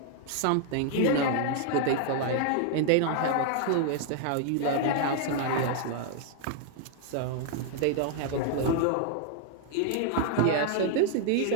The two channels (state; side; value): different; both; correlation 0.00